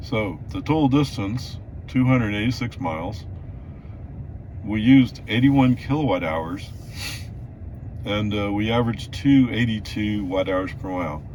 So the total distance, 286 miles. We used 81 kilowatt hours, and we averaged 282 watt hours per mile.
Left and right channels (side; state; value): both; identical; correlation 1.00